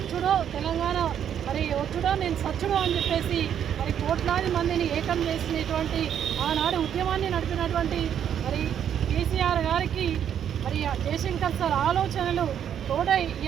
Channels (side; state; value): left; quieter; 9.2 dB